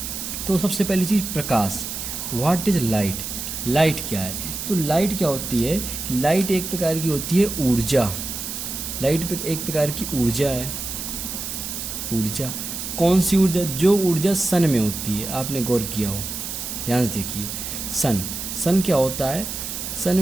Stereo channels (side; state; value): right; noise; hiss, 6 dB below the sound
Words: तो सबसे पहली चीज़ प्रकाश। What is light? लाइट क्या है? तो लाइट क्या होती है? लाइट एक प्रकार की होती है ऊर्जा। लाइट एक प्रकार की ऊर्जा है। ऊर्जा कौन सी ऊर्जा? जो ऊर्जा सन में होती है। आपने गौर किया हो, ध्यान से देखिए। सन क्या होता है? सन